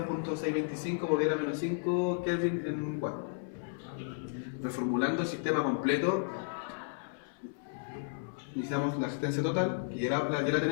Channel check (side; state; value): right; silent; 56 dB below the other